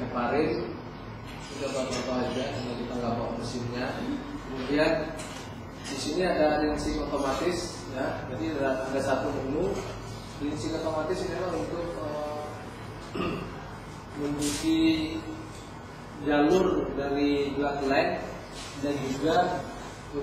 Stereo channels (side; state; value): both; identical; correlation 1.00